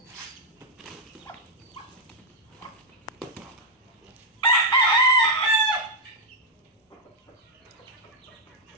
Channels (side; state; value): both; normal; correlation -0.03